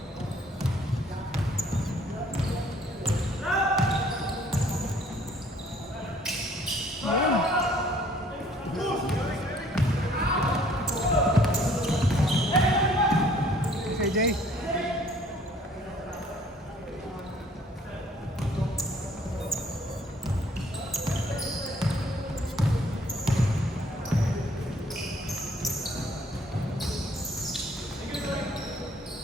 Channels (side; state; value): both; normal; correlation 0.58